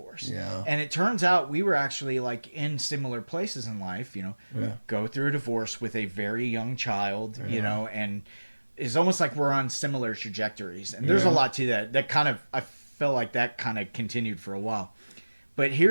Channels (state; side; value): inverted; both; correlation -1.00